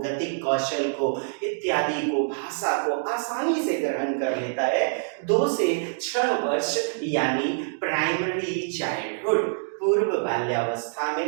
कौशल को, इत्यादि को, भाषा को आसानी से ग्रहण कर लेता है 2 से 6 वर्ष, यानी प्राइमरी चाइल्डहुड, पूर्व बाल्यावस्था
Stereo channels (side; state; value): left; silent; digital silence